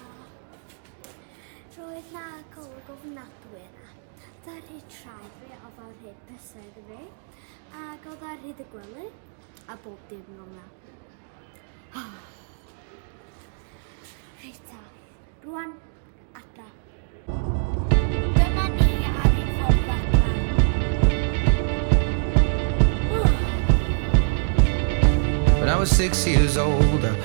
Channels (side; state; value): left; silent; digital silence